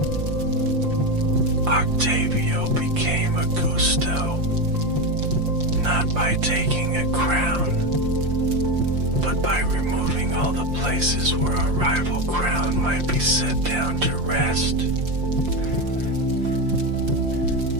Octavio became Augusto, not by taking a crown, but by removing all the places where a rival crown might be set down to rest.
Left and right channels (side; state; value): left; late; 5.7 ms